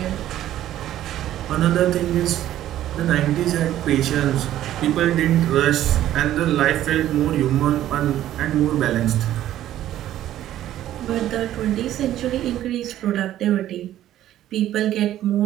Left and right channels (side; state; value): left; quieter; 12.7 dB